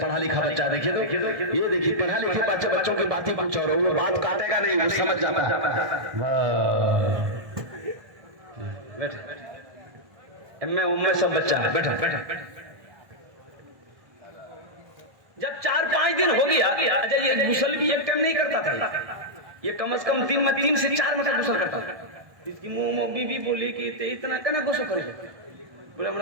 पढ़ा लिखा बच्चा। देखिए तो ये देखिए पढ़ा लिखा बच्चा, बच्चों की बातें कुछ और, वो बात काटेगा नहीं, वो समझ जाता है। उम्मे सब बच्चा है, बैठा। जब 4-5 दिन हो गया, अच्छा ये गुसल भी एक टाइम नहीं करता था, ये कम से कम दिन में 3 से 4 मिनट गुसल करता था। इसकी मुंह बीवी बोली कि इतना कहना गुस्सा करे, बोले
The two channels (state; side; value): late; left; 1.2 ms